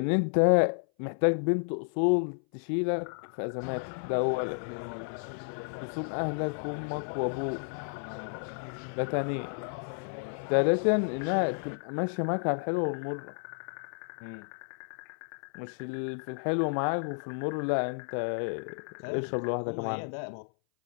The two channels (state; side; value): silent; right; 57 dB below the other